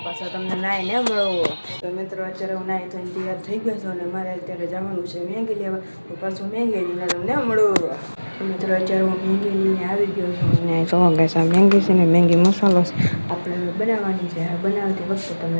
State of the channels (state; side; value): inverted; both; correlation -1.00